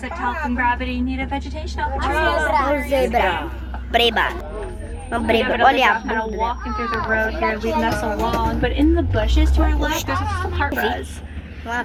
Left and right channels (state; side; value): identical; both; correlation 1.00